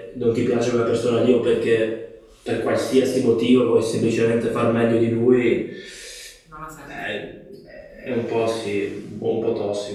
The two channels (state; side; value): identical; both; correlation 1.00